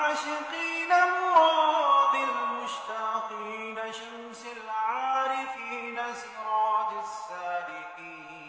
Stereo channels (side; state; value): both; identical; correlation 1.00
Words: مراد المشتاقين شمس العارفين سراج السالكين